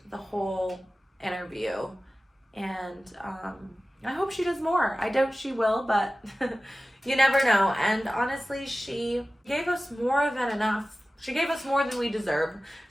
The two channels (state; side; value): normal; both; correlation 0.96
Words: the whole interview, and I hope she does more. I doubt she will, but you never know. And honestly, she gave us more than enough. She gave us more than we deserve.